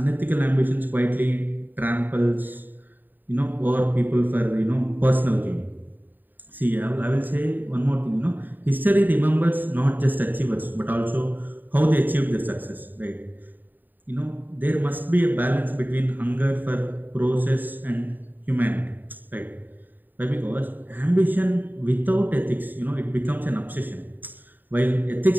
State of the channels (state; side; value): late; left; 0.090 ms